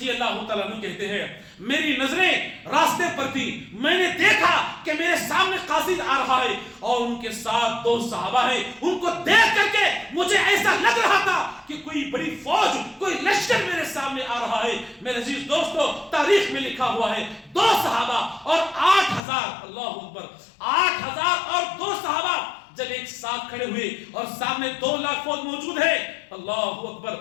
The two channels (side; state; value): right; drops out; at 19.2 s